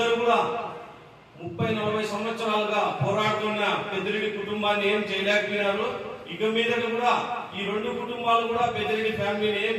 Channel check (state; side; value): identical; both; correlation 1.00